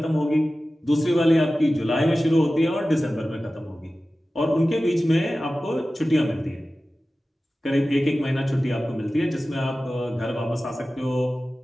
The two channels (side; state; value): both; normal; correlation 0.95